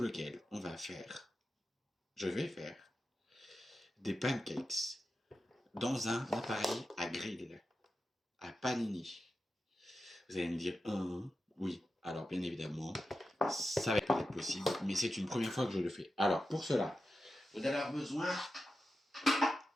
laquelle je vais faire des pancakes dans un appareil à grill, à panini. Vous allez me dire, oui, alors bien évidemment, ça va pas être possible, mais c'est une première fois que je le fais. Alors pour cela, vous allez avoir besoin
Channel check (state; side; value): normal; both; correlation 0.91